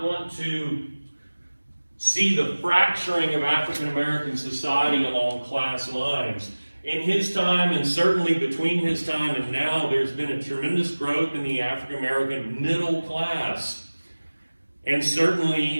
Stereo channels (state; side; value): inverted; both; correlation -1.00